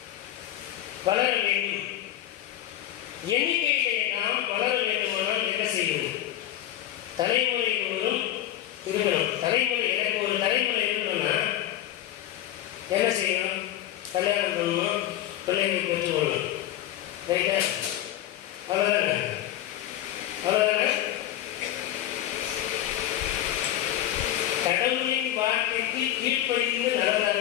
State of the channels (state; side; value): quieter; right; 12.7 dB